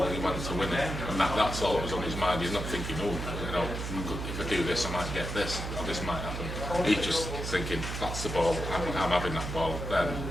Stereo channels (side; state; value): right; noise; hum, 5 dB below the sound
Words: and he went to win it, and that's all that was on his mind. He's not thinking, oh, you know, if I do this, I might get this, or this might happen. He's just thinking, that's the ball. I'm having that ball. Then